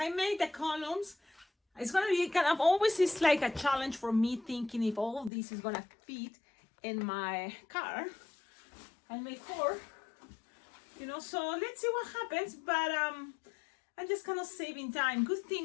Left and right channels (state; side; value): drops out; right; at 5.3 s